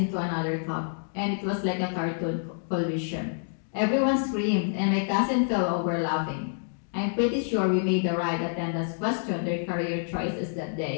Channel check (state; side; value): silent; right; digital silence